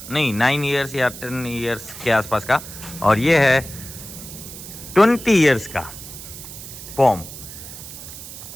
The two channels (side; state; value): right; noise; hiss, 13 dB below the sound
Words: ईयर्स या 10 ईयर्स के आसपास का, और ये है 20 ईयर्स का पॉम।